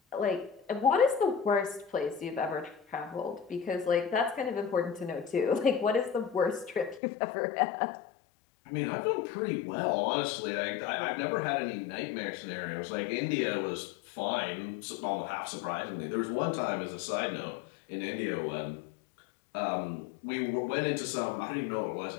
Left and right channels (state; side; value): drops out; right; at 7.0 s